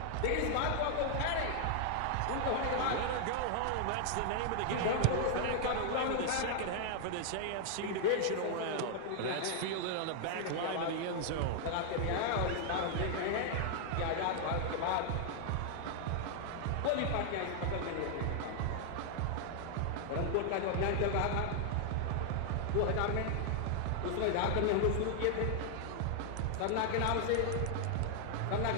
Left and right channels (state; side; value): different; both; correlation 0.00